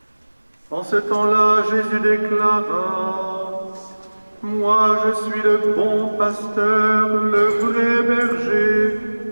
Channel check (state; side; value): inverted; both; correlation -1.00